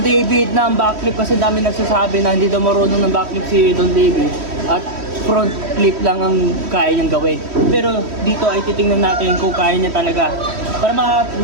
David ng backflip kasi dami nagsasabi na hindi daw marunong ng backflip si Don David at front flip lang ang kaya niyang gawin. Pero dito ay titingnan natin kung kaya niya talaga para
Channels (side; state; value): left; late; 3.1 ms